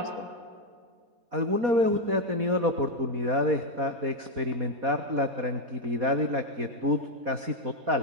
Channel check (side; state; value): left; late; 4.2 ms